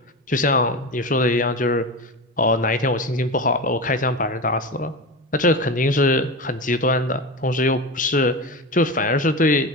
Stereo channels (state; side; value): normal; both; correlation 0.24